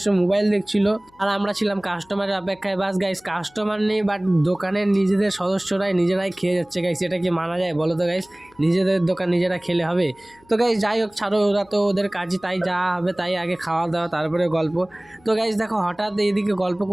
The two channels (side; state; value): left; noise; hum, 29 dB below the sound